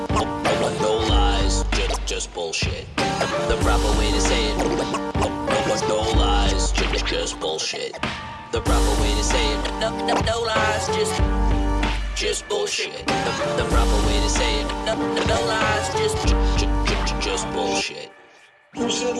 No lies, just bullshit. The proper way to say it. No lies, just bullshit. The proper way to say it. No lies, just bullshit. The proper way to say it. No lies, just bullshit. Who said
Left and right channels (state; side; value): identical; both; correlation 1.00